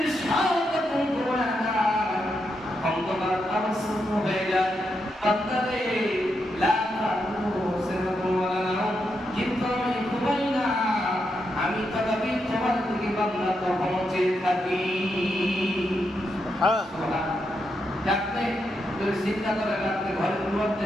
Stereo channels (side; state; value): both; normal; correlation 0.83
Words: সব অন্ধকার আবশ্যক হয়ে যায়, বান্দারে লা তাখুযুহু সিনাতুন ওয়া লা নাওম, কিন্তু আমি ঘুমাই না, আমি তথাপি তোমার দিকে বান্দা তখন চেয়ে থাকি। রাত্রে যদি চিন্তা করে রাত্রে ঘরের মধ্যে